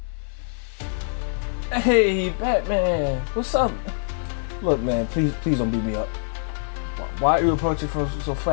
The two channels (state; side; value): silent; right; digital silence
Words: Hey, Batman, what's up? Look, man, please don't beat me up. Why are you approaching so